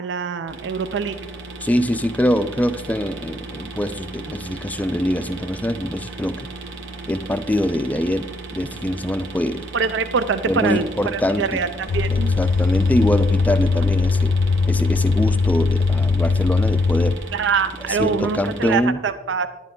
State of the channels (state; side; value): normal; both; correlation 0.72